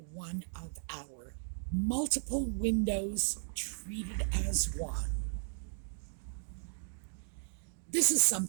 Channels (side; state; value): left; silent; digital silence